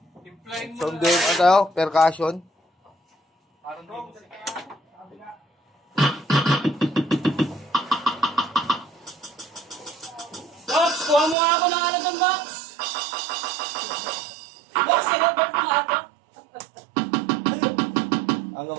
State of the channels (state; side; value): drops out; left; at 11.4 s